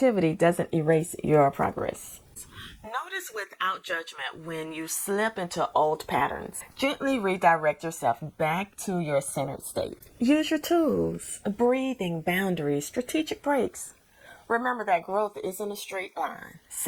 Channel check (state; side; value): identical; both; correlation 1.00